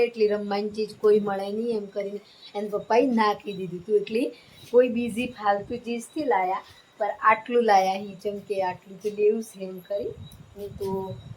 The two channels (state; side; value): identical; both; correlation 1.00